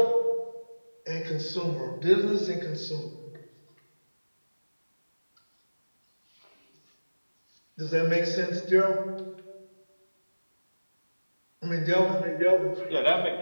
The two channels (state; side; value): inverted; both; correlation -1.00